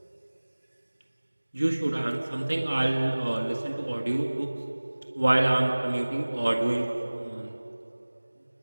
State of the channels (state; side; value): inverted; both; correlation -1.00